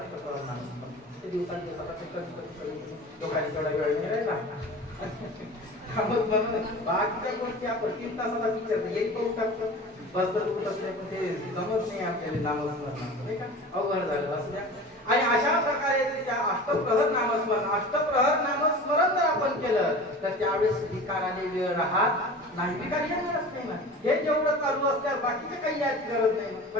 नाम ते दिवसांचे कधी लोकांनी तेवढा वेळ नाही राहिला. बाकीच्या गोष्टी आपण 3 तासाला विचार येईल पाहू टाकतो बस तर उठत नाही पण ते जमत नाही आपल्याला नामस्मरण नाही का अवघड झालं असं द्या. आणि अशा प्रकारे त्या अष्टप्रहर नामस्मरण जर आपण केलं तर त्यावेळेस विकाराने वेळ राहत नाही. विकार येणारच नाही ना. हे जेवढं चालू असल्यास बाकीचे काही याची गरज नाही.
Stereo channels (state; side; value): normal; both; correlation 0.37